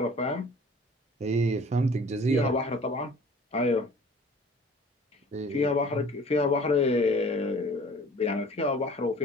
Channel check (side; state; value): both; normal; correlation 0.48